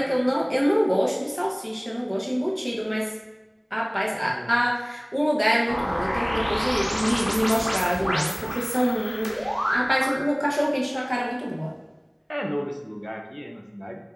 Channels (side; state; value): both; identical; correlation 1.00